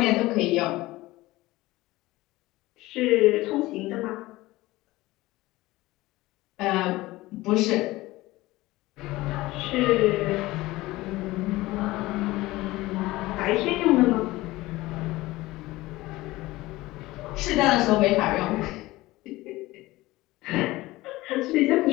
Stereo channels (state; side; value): quieter; right; 18.9 dB